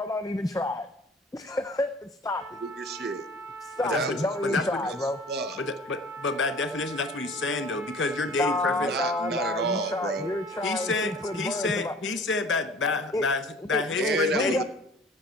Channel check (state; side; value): normal; both; correlation 0.47